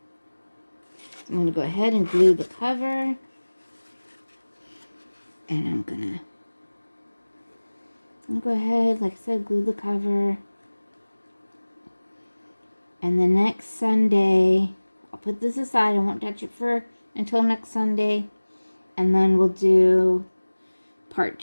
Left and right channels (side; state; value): both; inverted; correlation -1.00